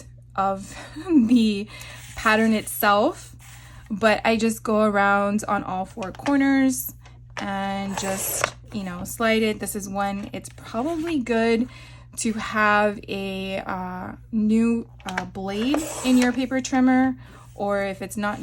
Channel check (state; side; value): identical; both; correlation 1.00